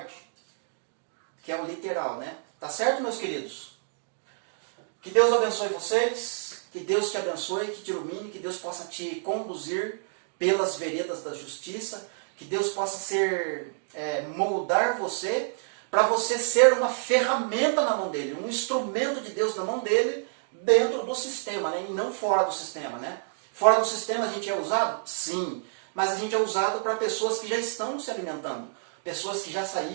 que é o literal, né? Tá certo, meus queridos? Que Deus abençoe vocês, que Deus te abençoe, que te ilumine, que Deus possa te conduzir pelas veredas da justiça, que Deus possa moldar você, para você ser uma ferramenta na mão dele, um instrumento de Deus na mão dele, dentro do sistema, né? E não fora do sistema, né? Fora do sistema a gente é usado? Sim, mas a gente é usado para pessoas que já estão se alimentando, pessoas que já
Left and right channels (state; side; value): silent; left; digital silence